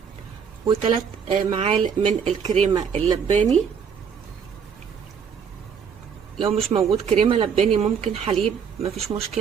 و3 معالق من الكريمه اللباني. لو مش موجود كريمه لباني ممكن حليب، مفيش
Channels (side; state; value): left; quieter; 6.9 dB